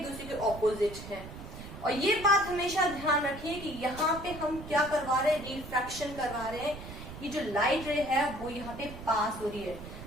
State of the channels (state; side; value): noise; right; rumble, 12 dB below the sound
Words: दूसरे के ऑपोजिट हैं. और ये बात हमेशा ध्यान रखिए कि यहाँ पे हम क्या करवा रहे हैं? रिफ्रैक्शन करवा रहे हैं. ये जो लाइट रे है वो यहाँ पे पास हो रही है,